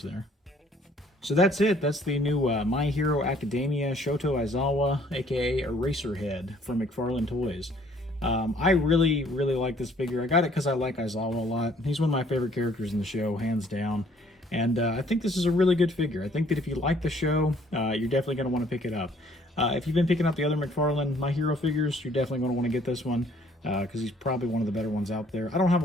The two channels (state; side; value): normal; both; correlation 0.60